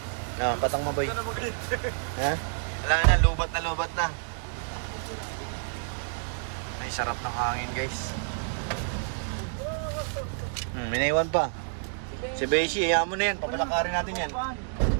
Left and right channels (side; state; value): left; silent; digital silence